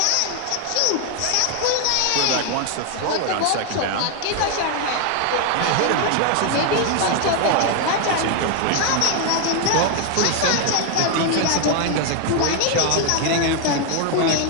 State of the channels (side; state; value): both; different; correlation 0.00